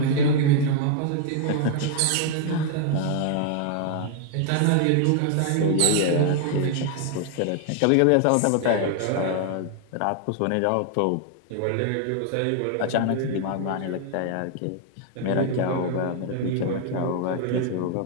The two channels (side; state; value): both; different; correlation 0.00